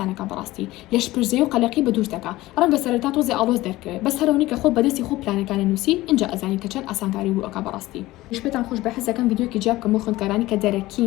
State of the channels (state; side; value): quieter; right; 17.9 dB